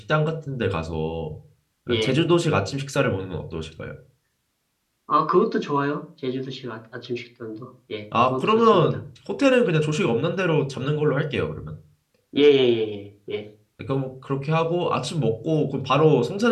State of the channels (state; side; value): identical; both; correlation 1.00